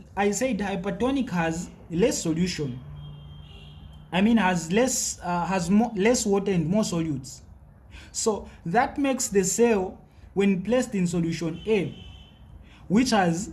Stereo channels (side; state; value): both; identical; correlation 1.00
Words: I said hypertonic has less solution. I mean has less water and more solutes. So that makes the cell, when placed in solution A, which has